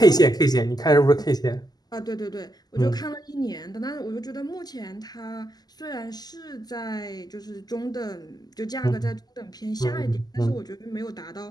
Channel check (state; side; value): late; right; 0.20 ms